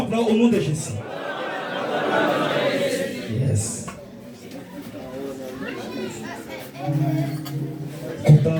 nom de Jésus. Yes.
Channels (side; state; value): both; identical; correlation 1.00